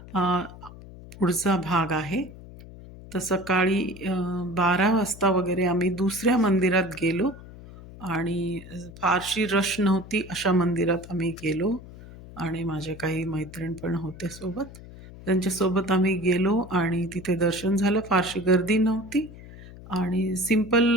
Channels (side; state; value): left; noise; hum, 17 dB below the sound